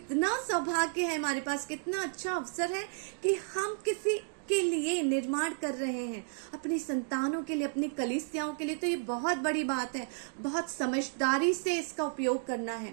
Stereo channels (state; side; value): silent; left; digital silence